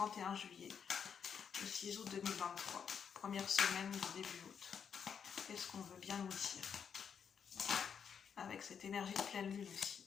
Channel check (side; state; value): right; quieter; 7.2 dB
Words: juillet au 6 août 2023, première semaine du début août. Qu'est-ce qu'on veut bien nous dire avec cette énergie de pleine lune aussi?